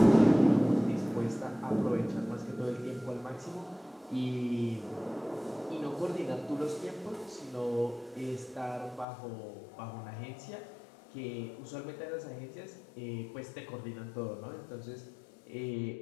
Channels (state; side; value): drops out; right; at 9.1 s